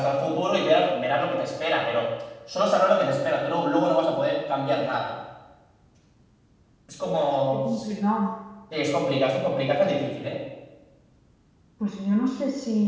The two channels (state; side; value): identical; both; correlation 1.00